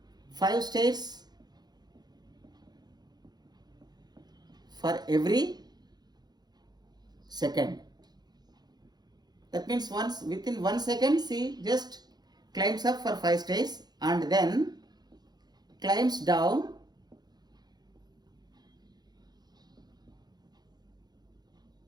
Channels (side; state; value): left; late; 0.20 ms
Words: 5 stairs for every second. That means once within 1 second she just climbs up for 5 stairs and then climbs down